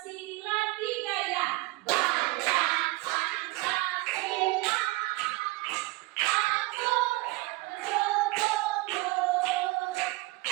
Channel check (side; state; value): left; quieter; 21.8 dB